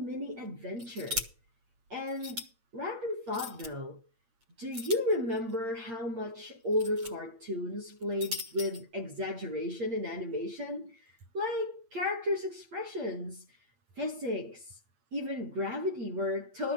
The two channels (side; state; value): left; late; 8.7 ms